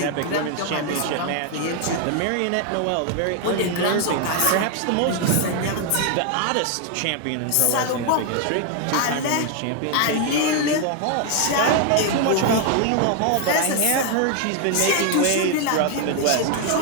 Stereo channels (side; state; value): both; different; correlation 0.00